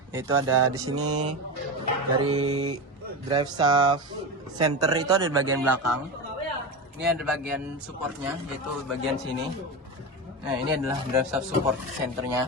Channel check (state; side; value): normal; both; correlation 0.20